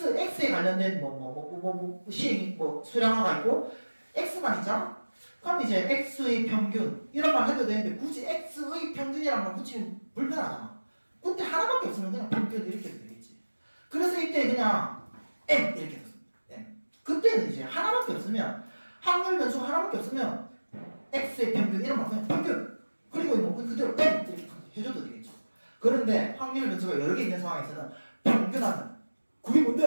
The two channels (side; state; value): both; inverted; correlation -1.00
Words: 관련된 시행 수량화가 있고 x만 있잖아. 그럼 이제 x의 평균 이런 말 해도 되는데 굳이 x의 평균이라는 말 붙이면 불편하잖아. 그때 하나밖에 없으면 그냥 평균 이렇게 해도 되겠지. 그래서 이때 그냥 m 이렇게 됐습니다. m. 그때는 이제 하나밖에 없으면 확률 변수 하나밖에 없으면 x의 평균 이런 말 그냥 평균 그리고 뭐 그대로 m 이렇게 해줘도 되겠죠. 그런데 확률 변수가 여러 개 있는 상황에서는 평균하는 그게